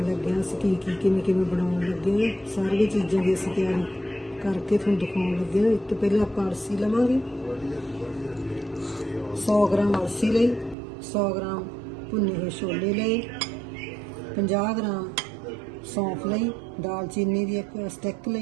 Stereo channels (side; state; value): left; drops out; at 10.8 s